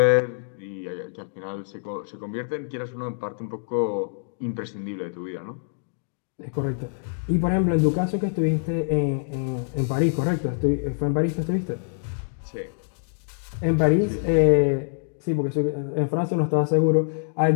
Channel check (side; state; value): right; silent; digital silence